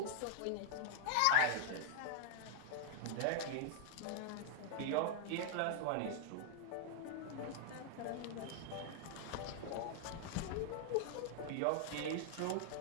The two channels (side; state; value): both; different; correlation 0.00